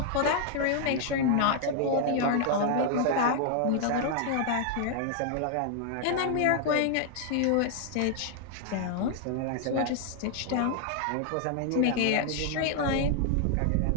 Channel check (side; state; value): both; different; correlation 0.00